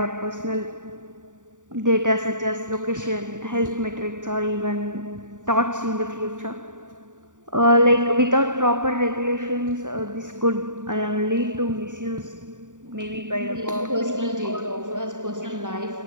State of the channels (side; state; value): left; late; 0.86 ms